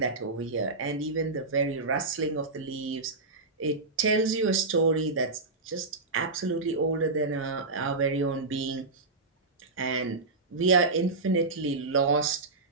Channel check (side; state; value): left; quieter; 3.5 dB